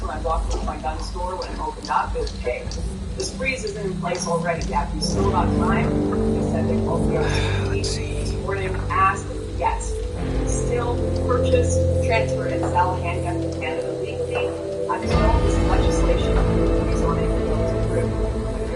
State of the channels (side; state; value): both; identical; correlation 1.00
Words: when I walked into my gun store when it opened up is, hey, yeah, if you still got time, they said they called the OCD this morning, asked, yes, still purchase, transfer, and sell handguns in Canada legally until this legislation is on it and goes through.